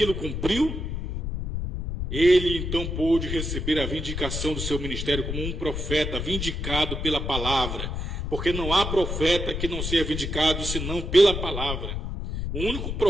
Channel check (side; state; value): left; noise; rumble, 4 dB below the sound